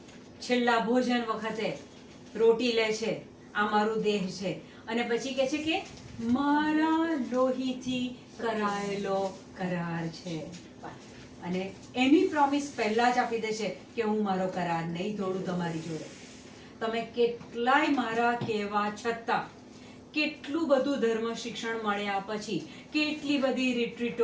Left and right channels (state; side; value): identical; both; correlation 1.00